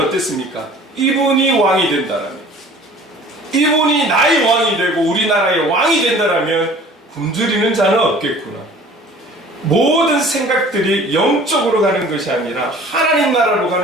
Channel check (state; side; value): normal; both; correlation 0.48